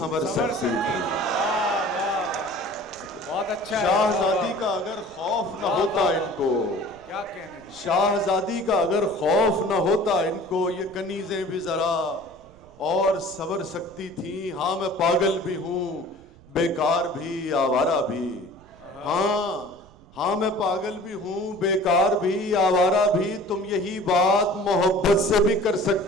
سکتی تھی۔ بہت اچھا، شاہزادی کا اگر خوف نہ ہوتا ان کو، کیا کہنے، شاہزادی کا اگر خوف نہ ہوتا ان کو، یہ کنیزیں بھی ذرا اور سنور سکتی تھی۔ ہاں میں پاگل بھی ہوں، بیکار بھی، آوارہ بھی، ہاں میں پاگل بھی ہوں، بیکار بھی، آوارہ بھی، تم یہی بات محبت سے بھی کر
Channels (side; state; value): right; noise; rumble, 25 dB below the sound